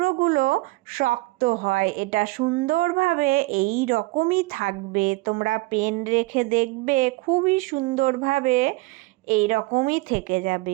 শক্ত হয়, এটা সুন্দরভাবে এই রকমই থাকবে। তোমরা পেন রেখে দেখবে খুবই সুন্দরভাবে এই রকমই থেকে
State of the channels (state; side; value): quieter; left; 22.1 dB